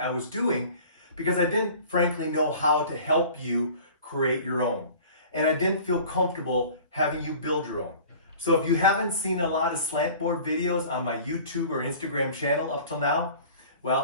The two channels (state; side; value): inverted; both; correlation -0.44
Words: was doing because I didn't frankly know how to help you create your own. And I didn't feel comfortable having you build your own. So if you haven't seen a lot of slant board videos on my YouTube or Instagram channel up till now,